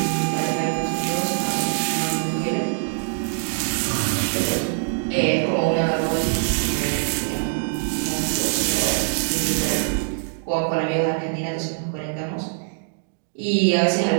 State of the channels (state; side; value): silent; left; digital silence